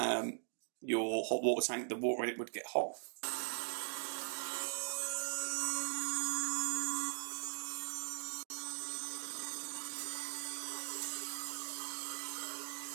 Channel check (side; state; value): left; silent; digital silence